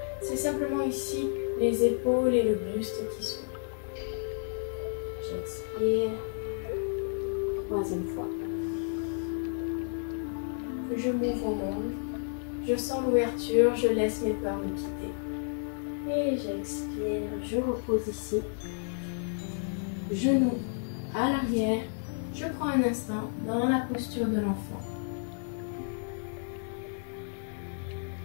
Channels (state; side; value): silent; right; digital silence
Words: C'est simplement ici les épaules et le buste qui s'ouvrent. J'expire. Troisième fois. Je m'ouvre au monde. Je sens l'ouverture, je laisse mes peurs me quitter. Et j'expire, je repose ici. Genoux à l'arrière. Je prends un instant dans la posture de l'enfant.